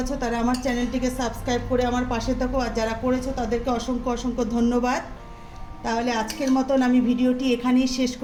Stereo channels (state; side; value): identical; both; correlation 1.00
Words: আছো তারা আমার চ্যানেলটিকে সাবস্ক্রাইব করে আমার পাশে থাকো, আর যারা করেছো তাদেরকে অসংখ্য অসংখ্য ধন্যবাদ। তাহলে আজকের মতন আমি ভিডিওটি এখানেই শেষ